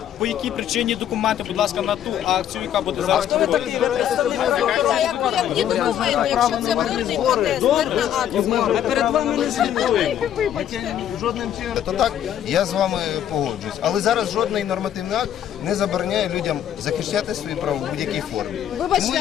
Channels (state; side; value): quieter; right; 10.3 dB